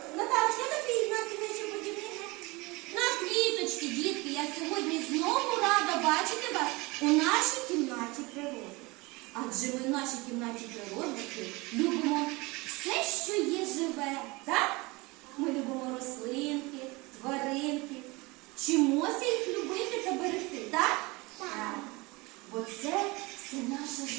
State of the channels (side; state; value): left; quieter; 24.4 dB